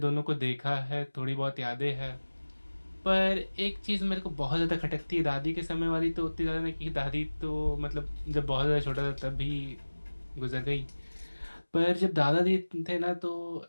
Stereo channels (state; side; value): inverted; both; correlation -1.00